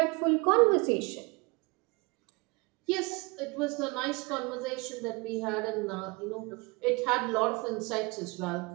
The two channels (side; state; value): left; quieter; 27.6 dB